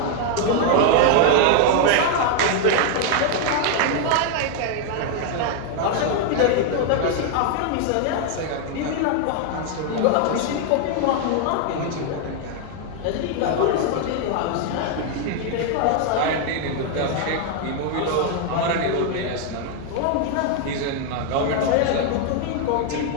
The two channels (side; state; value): both; different; correlation 0.00